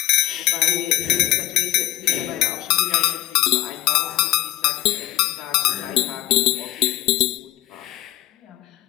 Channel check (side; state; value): right; quieter; 15.6 dB